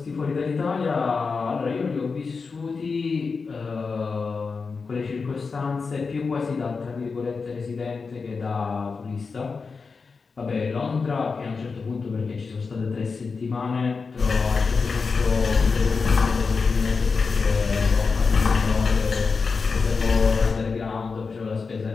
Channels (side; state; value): right; quieter; 4.8 dB